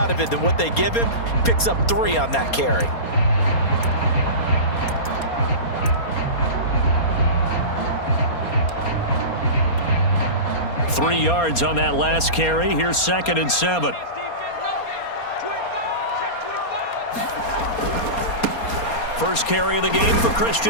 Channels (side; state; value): right; late; 4.3 ms